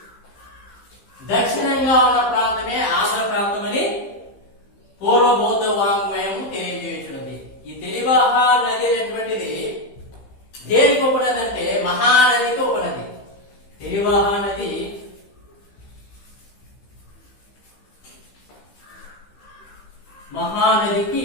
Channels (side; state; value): right; late; 15 ms